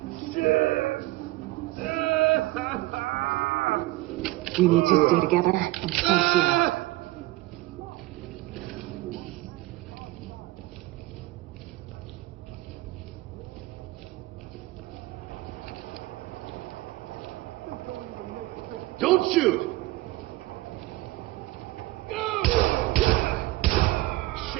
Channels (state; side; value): quieter; left; 19.0 dB